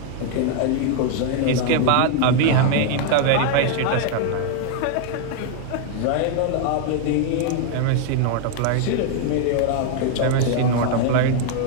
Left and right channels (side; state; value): both; different; correlation 0.00